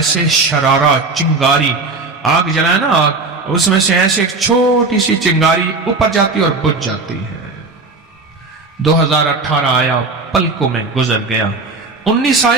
शरारा, चिंगारी। आग जलाए ना, आग, उसमें से ऐसे एक छोटी सी चिंगारी ऊपर जाती और बुझ जाती है। 2018 आया, पलकों में गुजर गया। 19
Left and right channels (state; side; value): quieter; left; 3.7 dB